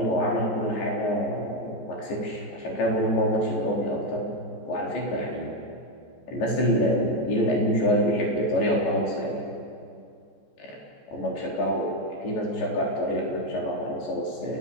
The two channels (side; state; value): right; late; 14 ms